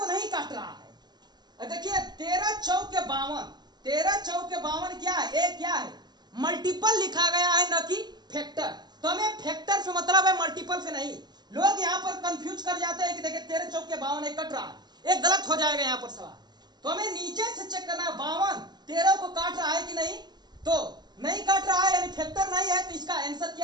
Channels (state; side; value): late; left; 0.21 ms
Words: नहीं काट रहा है। देखिए 13 चौके 52, 13 चौके 52 क्या है, एक क्या है, मल्टीपल लिखा गया है, न कि फैक्टर। तो हमें फैक्टर से मतलब है, मल्टीपल से नहीं। लोग यहाँ पर कंफ्यूज कर जाते हैं कि देखिए 13 चौके 52 कट रहा है, एक गलत हो जाएगा यहाँ पर सवाल। तो हमें नीचे से चेक करना है 52 13 को काट रहा है कि नहीं, तो नहीं काट रहा है यानी फैक्टर नहीं है। तो इसका आंसर